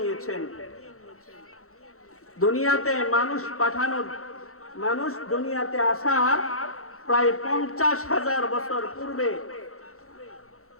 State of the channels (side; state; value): right; late; 0.64 ms